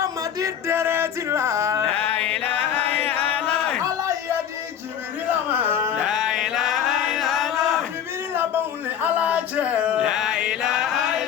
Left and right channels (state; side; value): quieter; right; 9.1 dB